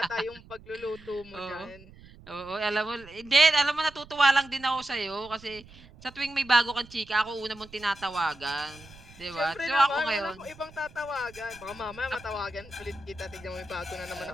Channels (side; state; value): right; noise; rumble, 21 dB below the sound